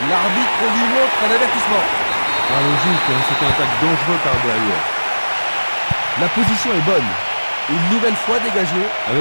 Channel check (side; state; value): both; inverted; correlation -1.00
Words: L'arbitre lui montre un avertissement. Ah, logique, hein, c'est un attaque dangereux par derrière. La position est bonne. Une nouvelle fois dégagée.